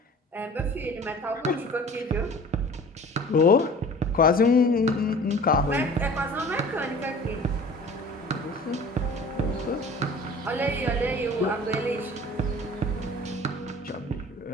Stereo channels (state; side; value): normal; both; correlation 0.44